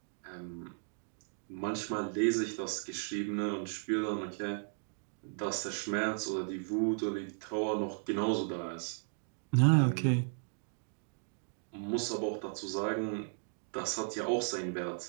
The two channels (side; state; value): left; silent; 54 dB below the other